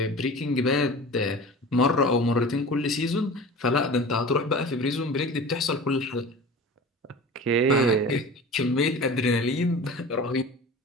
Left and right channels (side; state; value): both; normal; correlation 0.36